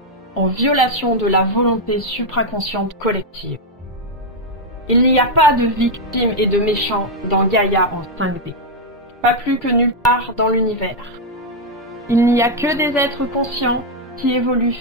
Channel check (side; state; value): both; normal; correlation 0.00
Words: en violation de la volonté supraconsciente collective. Il n'y a pas de victimes et de méchants dans Gaïa en 5D, pas plus que nulle part dans l'univers. Il n'y a que des êtres conscients qui évoluent